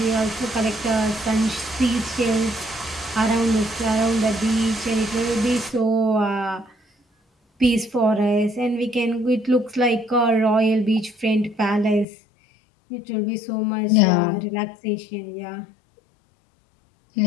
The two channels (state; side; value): drops out; right; at 12.1 s